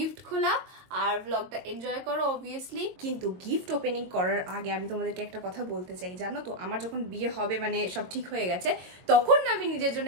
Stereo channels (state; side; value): late; left; 22 ms